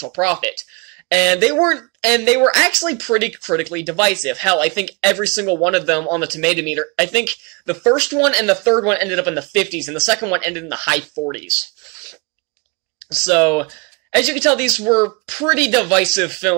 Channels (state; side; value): quieter; left; 30.5 dB